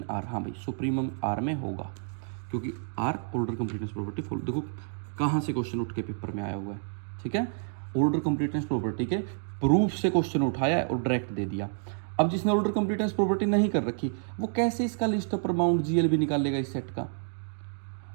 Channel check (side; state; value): left; silent; digital silence